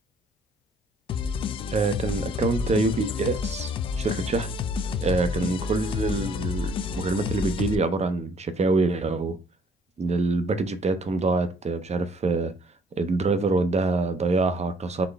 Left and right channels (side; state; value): both; normal; correlation 0.60